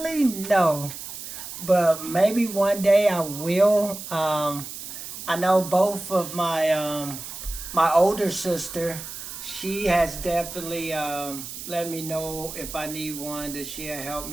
no. But maybe one day I will. I know both of my my older sister, she has definitely let me know if I need one, that she'll help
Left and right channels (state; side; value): noise; right; hiss, 10 dB below the sound